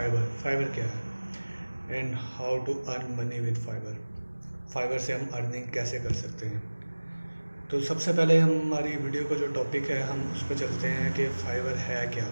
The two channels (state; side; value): inverted; both; correlation -1.00